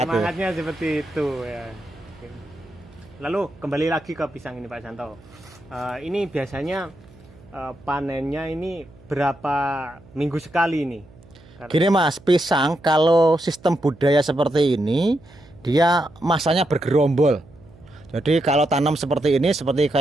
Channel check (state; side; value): noise; right; hum, 24 dB below the sound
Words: seperti itu ya. Lalu kembali lagi ke pisang ini Pak Santo. Ini biasanya panennya ini berapa minggu sekali ini? Gini Mas, pisang kalau sistem budaya seperti ini dia masanya bergerombol. Jadi kalau tanam seperti ini, seperti